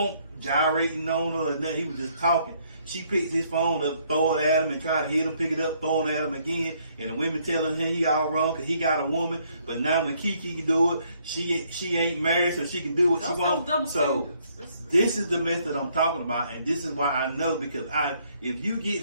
gyrating on her or nothing. He was just talking. She picks his phone up, throw it at him, and try to hit him, pick it up, throw it at him again. And the women telling him he all wrong because he got a woman. But now when KeKe can do it, she ain't married, so she can do what she wants. So this is the method I'm talking about, and this is why I know, because if you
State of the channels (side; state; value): both; inverted; correlation -0.68